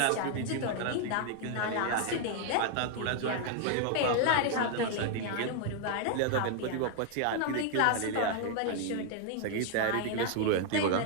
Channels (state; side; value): different; both; correlation 0.00